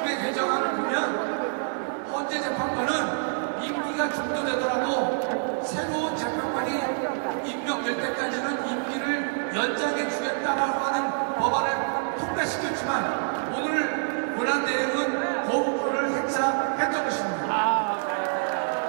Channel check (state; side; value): silent; left; digital silence